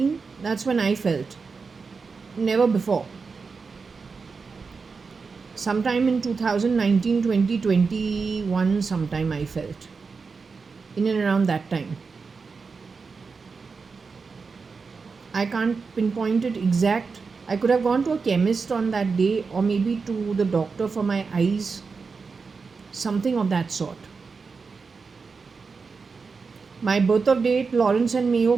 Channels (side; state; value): left; quieter; 4.8 dB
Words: that's when I felt. Never before. Sometime in 2019, 2021, sometime I felt. In and around that time. I can't pinpoint it exact. I could have gone to a chemist on that day, or maybe to the doctor for my eyes. Something of that sort. My birth of date, Lawrence and Mayo